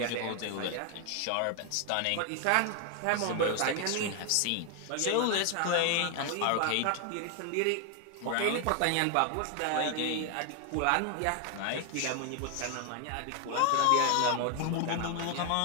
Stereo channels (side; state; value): both; different; correlation 0.00